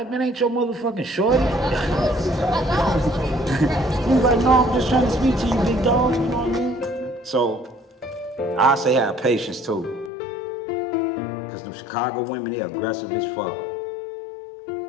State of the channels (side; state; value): right; drops out; at 10.1 s